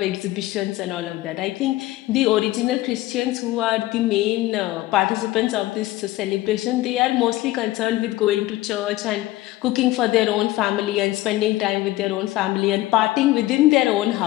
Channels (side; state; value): right; quieter; 17.1 dB